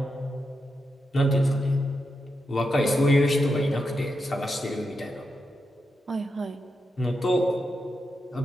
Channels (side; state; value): both; normal; correlation 0.86